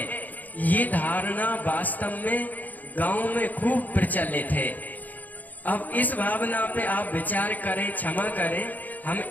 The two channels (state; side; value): late; right; 0.082 ms